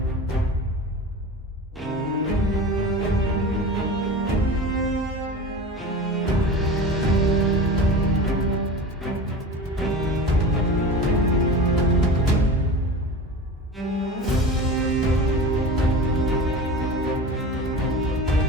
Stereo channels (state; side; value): normal; both; correlation 0.32